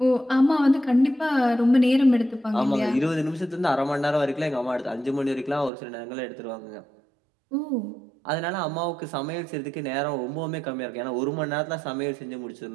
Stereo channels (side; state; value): left; drops out; at 5.7 s